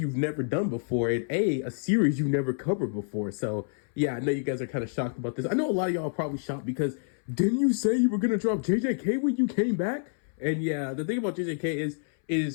never done before, and a series you've never covered before. So yeah, I know you guys are kind of shocked about this. I know a lot of y'all are probably shocked because didn't you say you were gonna drop JJK when you came back? And yeah, the thing about JJK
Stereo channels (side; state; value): right; silent; 59 dB below the other